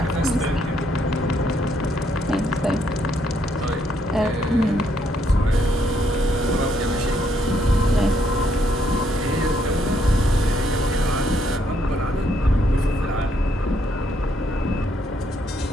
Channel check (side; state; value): both; normal; correlation 0.72